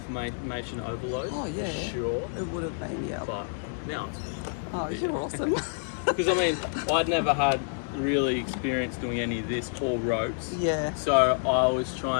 overload. Oh, yeah. For sure. It would have been, But now it's you're awesome. Because, I mean, I'd never had really experience doing any of this or ropes. Yeah. So I was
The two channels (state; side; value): silent; right; digital silence